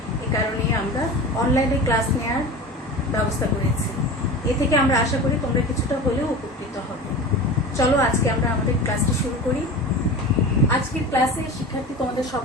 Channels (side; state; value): both; normal; correlation 0.32